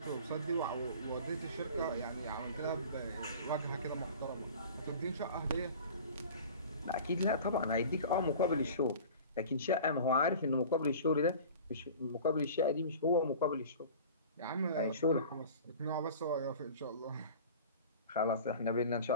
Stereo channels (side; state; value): both; inverted; correlation -0.40